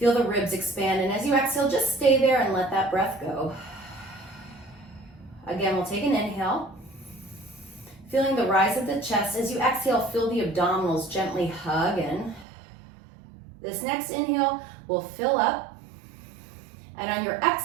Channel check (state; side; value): drops out; left; at 12.5 s